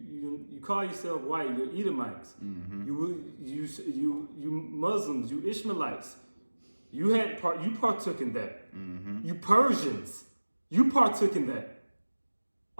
call yourself white. You're Edomites. You Muslims. You Ishmaelites. You partook in that. You Persians. You partook in that.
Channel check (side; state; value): both; inverted; correlation -1.00